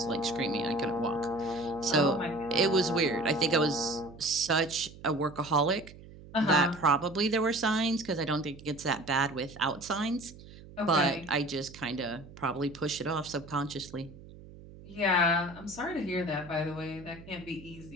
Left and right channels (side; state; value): right; noise; hum, 18 dB below the sound